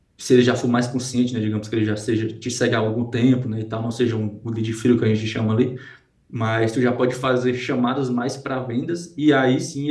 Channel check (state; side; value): identical; both; correlation 1.00